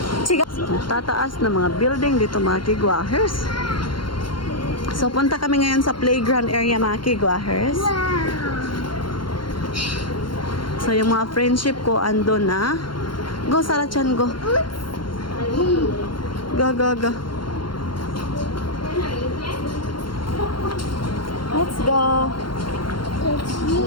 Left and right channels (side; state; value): right; late; 0.72 ms